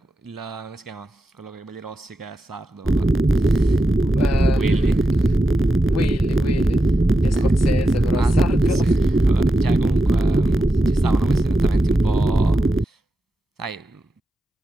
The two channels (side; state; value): both; normal; correlation 0.88